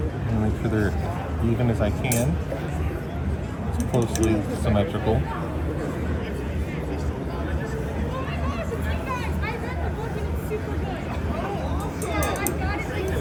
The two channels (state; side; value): identical; both; correlation 1.00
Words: And make sure they're even as I can. It's closely symmetrical.